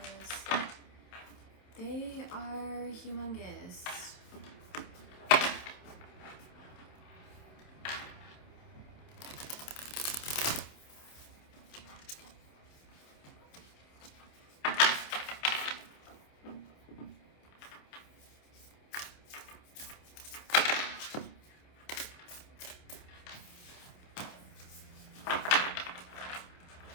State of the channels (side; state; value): right; late; 27 ms